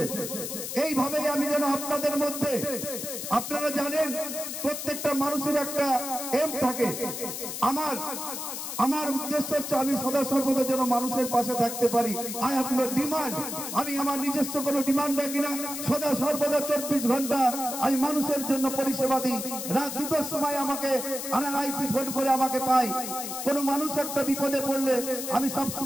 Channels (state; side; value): noise; left; hiss, 6 dB below the sound